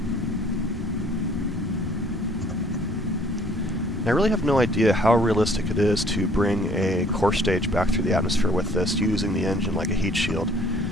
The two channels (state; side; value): normal; both; correlation 0.57